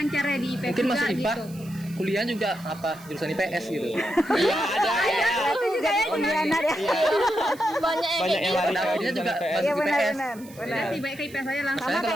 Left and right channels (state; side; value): noise; right; hiss, 22 dB below the sound